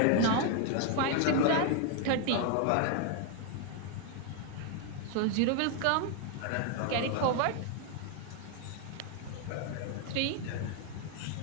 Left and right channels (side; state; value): both; different; correlation 0.01